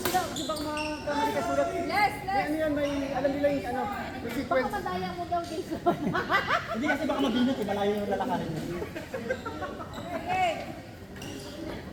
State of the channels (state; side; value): identical; both; correlation 1.00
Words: Di ba mga kamali ka sulat? Yes, yes. Ano yan, may alam nila yung ano, may Baka sequence. madaya mo daw dito. Hindi kasi baka mabinat eh, malayo yung lalakarin mo. Okay.